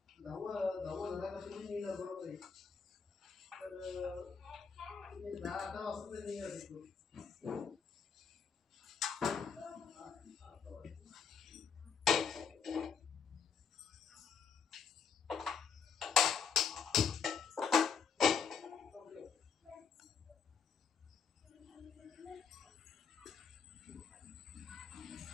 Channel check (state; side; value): quieter; right; 6.1 dB